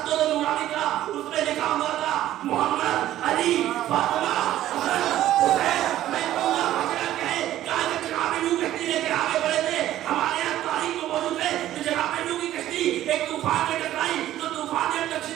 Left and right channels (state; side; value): quieter; left; 13.3 dB